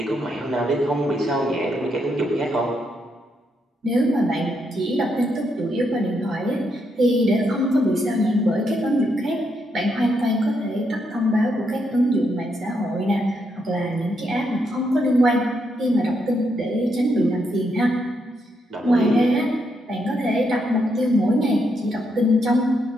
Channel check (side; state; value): both; normal; correlation 0.79